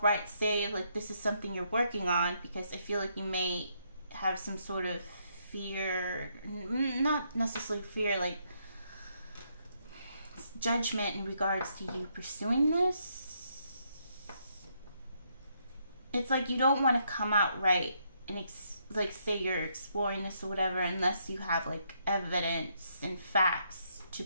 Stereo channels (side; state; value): both; inverted; correlation -0.75